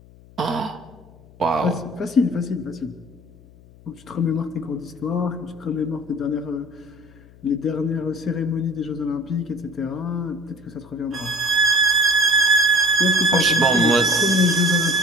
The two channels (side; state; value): left; noise; hum, 24 dB below the sound